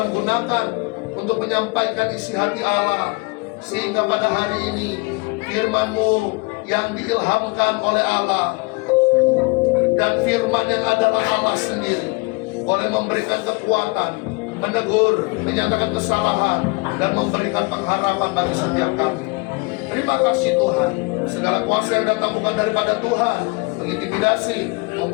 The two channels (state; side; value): quieter; right; 28.0 dB